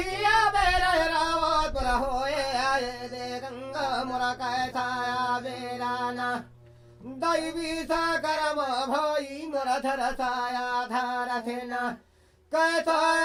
बेरा रावत पर होए आए दे गंगा मोरा कैसा बेरा ना दैवी सा करम भाई मोरा धर साया धार थे ना कैसा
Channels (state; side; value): identical; both; correlation 1.00